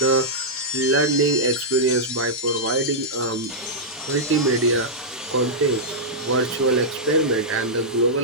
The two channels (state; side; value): normal; both; correlation -0.10